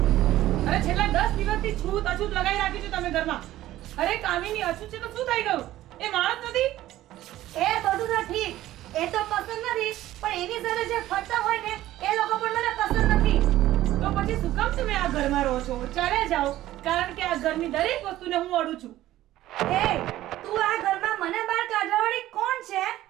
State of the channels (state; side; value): quieter; left; 14.7 dB